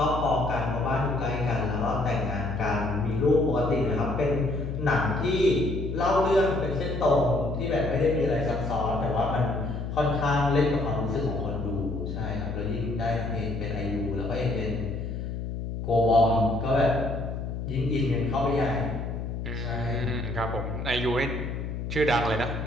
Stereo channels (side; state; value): left; noise; hum, 5 dB below the sound